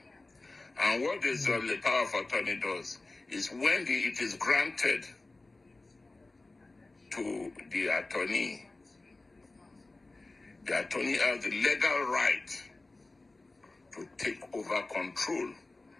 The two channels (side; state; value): right; quieter; 3.2 dB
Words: And what this the power of attorney does is when it is granted to the attorney has the legal right to take over control